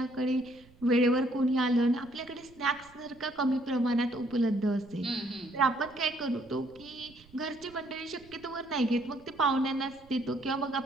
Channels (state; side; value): noise; right; rumble, 26 dB below the sound